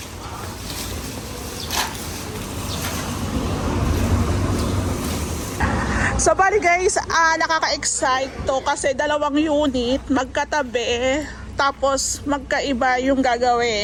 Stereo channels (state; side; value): identical; both; correlation 1.00